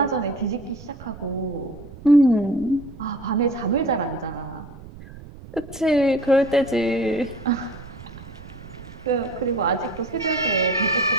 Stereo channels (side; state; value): right; noise; rumble, 16 dB below the sound